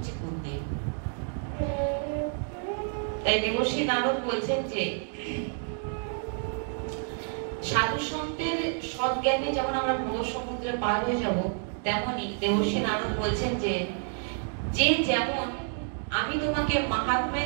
গুরুদেব। তাই দেবশ্রী নারদ বলছেন যে সাধু সন্তের সৎজ্ঞানে যেমন আমরা ভব সমুদ্রে পার হয়ে যাব, তেমনি দেবশ্রী নারদ বলছেন যে যেমন আমি তোমাকে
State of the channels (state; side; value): silent; left; 58 dB below the other